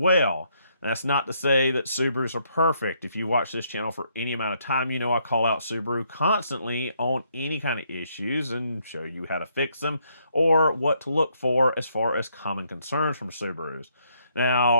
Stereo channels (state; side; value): inverted; both; correlation -0.72